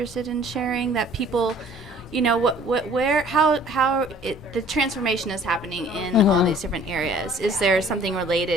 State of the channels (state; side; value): normal; both; correlation 0.53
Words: in sharing, that people, how the transformation is happening in all these different areas. Is there something